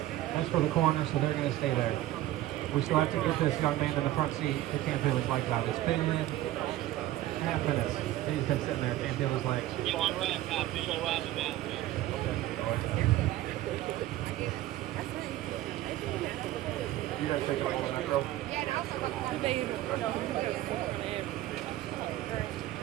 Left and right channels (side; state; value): left; quieter; 14.9 dB